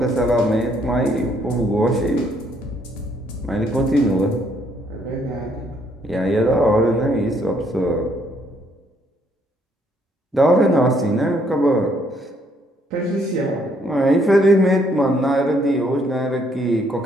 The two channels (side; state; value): both; normal; correlation 0.68